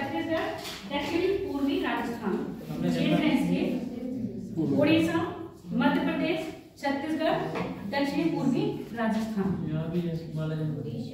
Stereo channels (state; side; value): identical; both; correlation 1.00